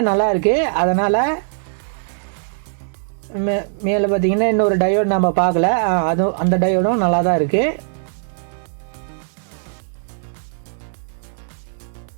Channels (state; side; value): silent; left; digital silence